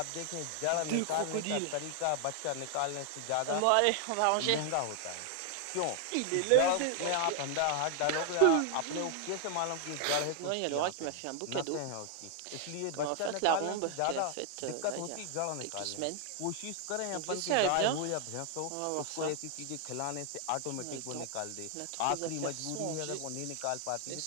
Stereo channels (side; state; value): both; different; correlation 0.00